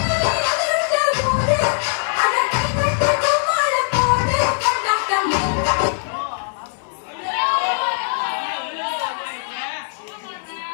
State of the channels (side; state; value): right; silent; digital silence